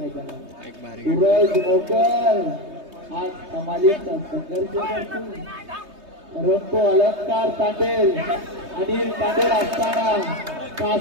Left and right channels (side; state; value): left; late; 3.2 ms